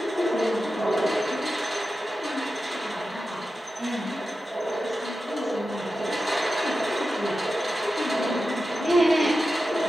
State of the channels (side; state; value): both; normal; correlation 0.92